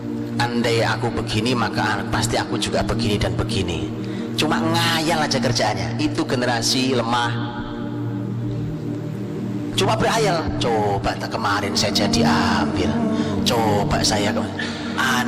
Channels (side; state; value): both; identical; correlation 1.00